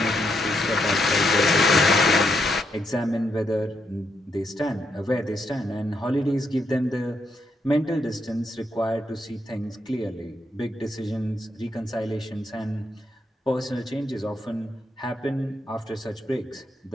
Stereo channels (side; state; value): both; normal; correlation 0.78